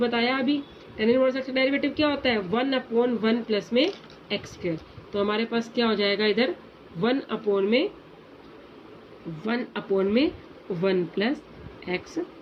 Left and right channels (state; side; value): identical; both; correlation 1.00